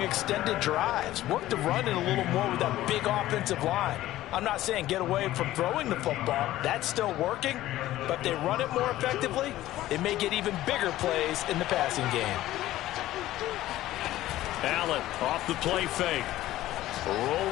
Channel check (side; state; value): right; quieter; 15.0 dB